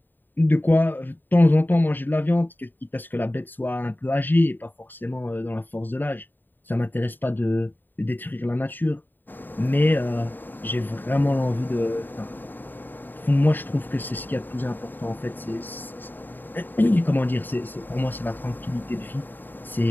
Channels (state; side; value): late; right; 0.091 ms